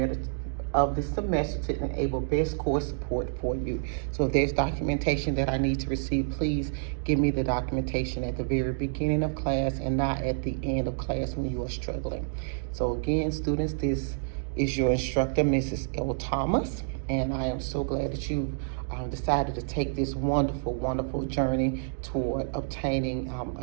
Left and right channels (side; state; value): left; silent; digital silence